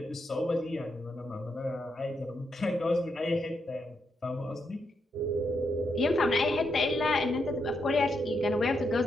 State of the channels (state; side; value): normal; both; correlation 0.81